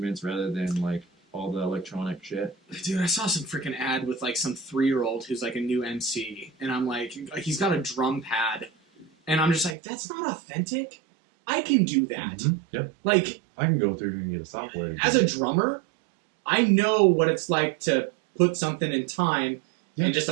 rather than like all the electronic shit. Dude, I saw some freaking ad with like some 3-year-old who's like a new MC, and I'm like, he's got a drum pad, and I'm just like, that's not authentic. I can do that. Mm-hmm. Yep. Like, I can go through and get a software. as a drummer, I know what it's like to put something in time and just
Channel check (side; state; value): left; drops out; at 9.8 s